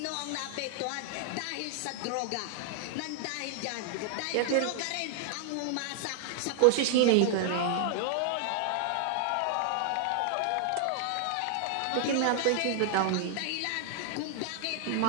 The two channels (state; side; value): different; both; correlation 0.00